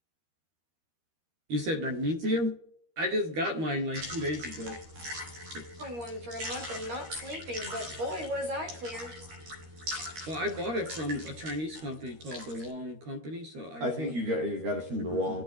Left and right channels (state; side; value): late; left; 13 ms